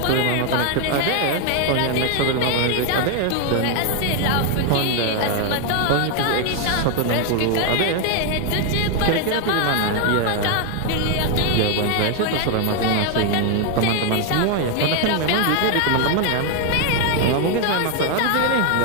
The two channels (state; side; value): different; both; correlation 0.00